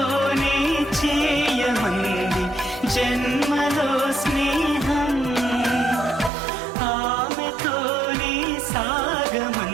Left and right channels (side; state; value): left; drops out; at 6.3 s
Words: చేయమంది జన్మలో స్నేహం, ఆమెతోనే